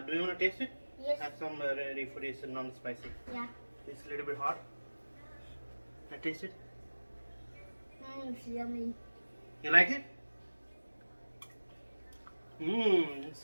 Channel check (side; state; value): both; inverted; correlation -1.00